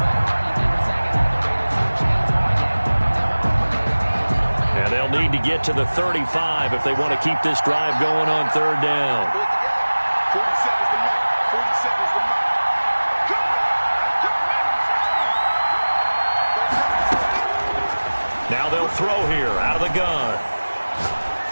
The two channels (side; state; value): both; inverted; correlation -1.00